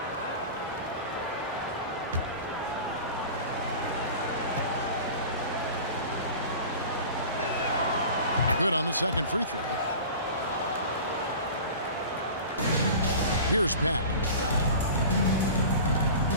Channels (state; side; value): inverted; both; correlation -0.37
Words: Good on the second free throw. Here's Pat.